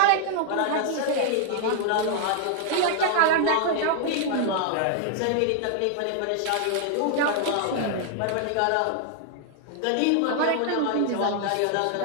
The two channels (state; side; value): different; both; correlation 0.00